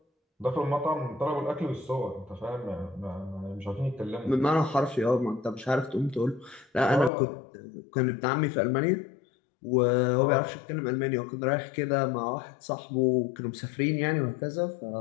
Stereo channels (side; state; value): right; drops out; at 7.1 s